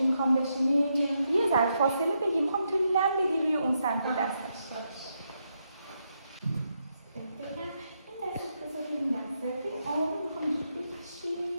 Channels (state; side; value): inverted; both; correlation -0.81